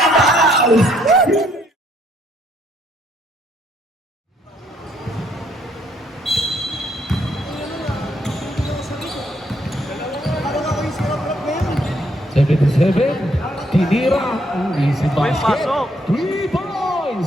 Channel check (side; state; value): both; normal; correlation 0.70